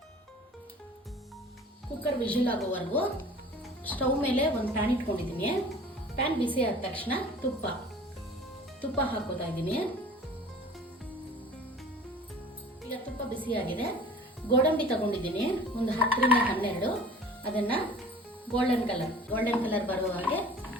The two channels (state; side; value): normal; both; correlation 0.45